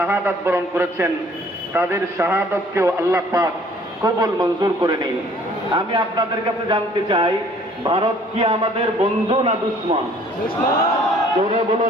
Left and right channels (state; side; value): normal; both; correlation 0.56